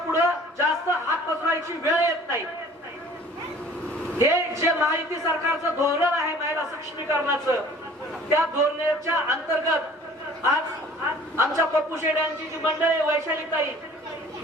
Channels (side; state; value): both; normal; correlation 0.50